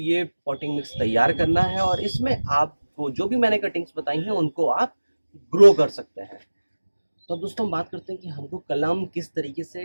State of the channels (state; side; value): inverted; both; correlation -1.00